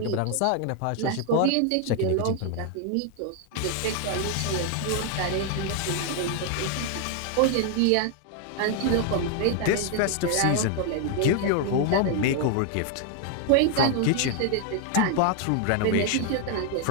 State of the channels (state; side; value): different; both; correlation 0.00